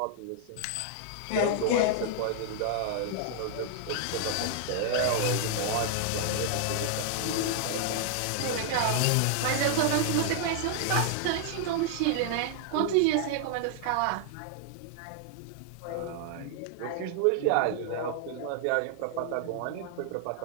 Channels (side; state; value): both; different; correlation -0.01